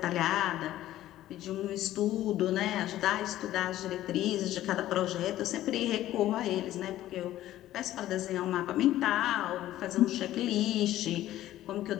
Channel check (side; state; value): right; quieter; 14.0 dB